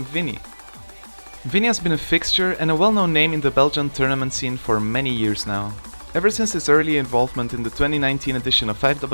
Vinnie. Vinnie has been a fixture and a well-known name in the Belgian tournament scene for many years now. Ever since his early involvement in the 2019 edition of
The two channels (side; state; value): both; inverted; correlation -1.00